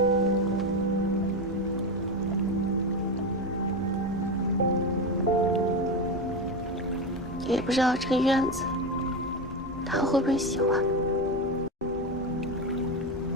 也不知道这个院子他会不会喜欢。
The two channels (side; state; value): both; normal; correlation 0.17